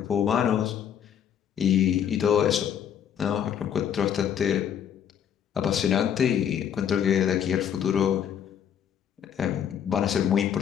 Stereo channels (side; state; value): right; quieter; 9.0 dB